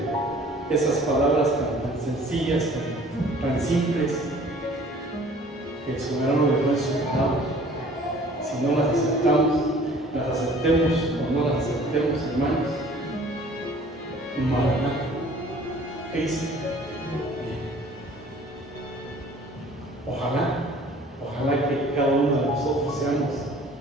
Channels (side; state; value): both; normal; correlation 0.51